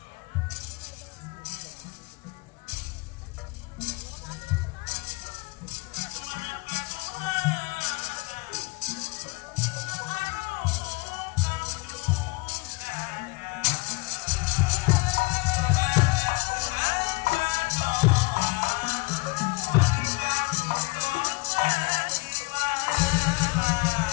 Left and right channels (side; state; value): right; quieter; 25.8 dB